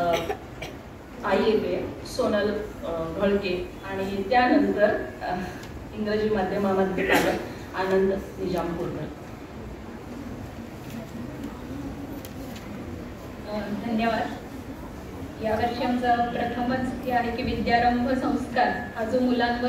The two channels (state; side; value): identical; both; correlation 1.00